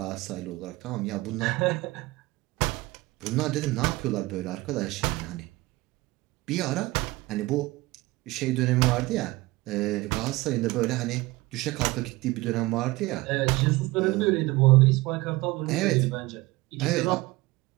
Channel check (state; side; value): quieter; left; 20.9 dB